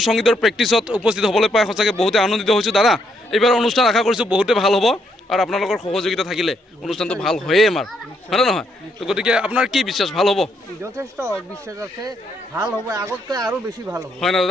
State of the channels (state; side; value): normal; both; correlation 0.75